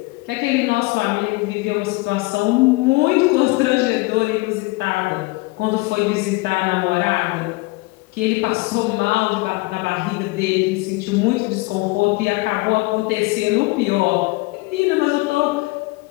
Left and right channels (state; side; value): quieter; right; 23.5 dB